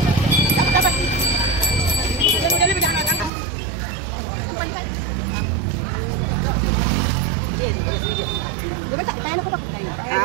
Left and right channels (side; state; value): left; drops out; at 3.3 s